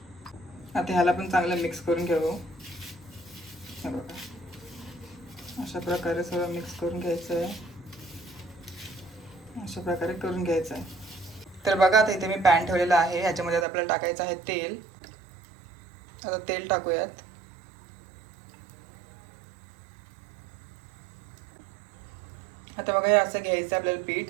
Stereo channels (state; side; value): drops out; left; at 13.7 s